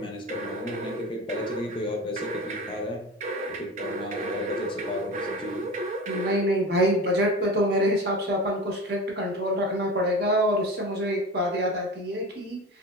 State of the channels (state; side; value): normal; both; correlation 0.32